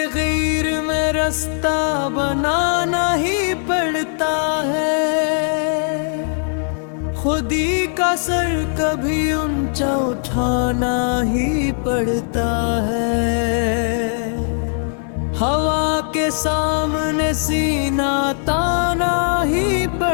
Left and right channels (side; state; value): right; silent; 61 dB below the other